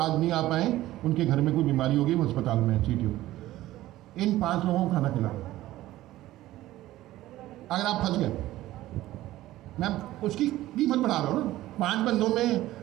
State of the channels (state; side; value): quieter; left; 15.6 dB